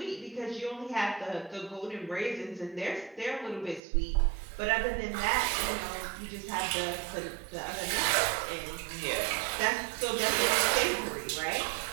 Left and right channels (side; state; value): left; drops out; at 3.8 s